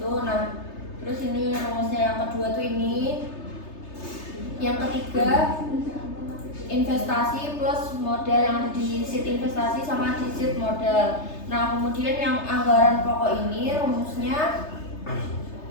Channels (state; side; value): late; right; 3.3 ms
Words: Nah, terus ini rumusnya yang kedua tuh ini. Yang ketiga investasi plus modal yang ada di sheet investasi sama di sheet modal. Nah, kemudian yang anggaran pokok ini rumusnya